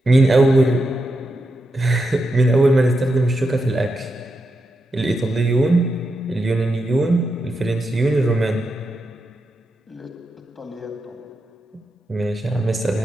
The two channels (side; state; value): both; normal; correlation 0.86